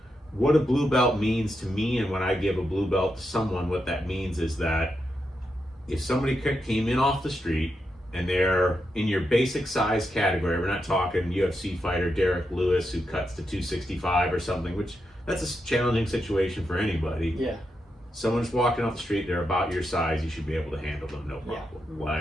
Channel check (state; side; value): normal; both; correlation 0.85